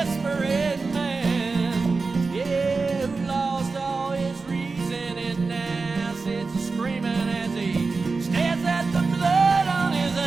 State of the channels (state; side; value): quieter; left; 4.1 dB